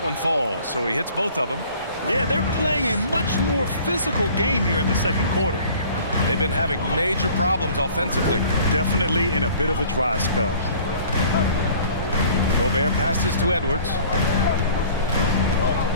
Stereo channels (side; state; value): both; inverted; correlation -0.50